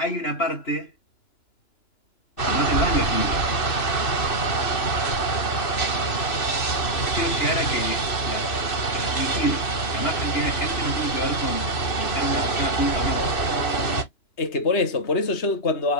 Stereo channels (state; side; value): late; right; 2.9 ms